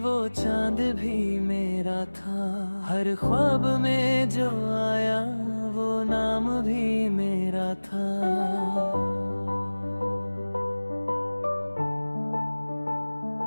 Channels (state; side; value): inverted; both; correlation -1.00